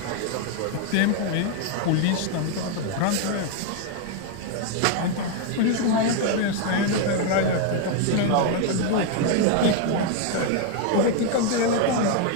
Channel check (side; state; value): both; different; correlation 0.01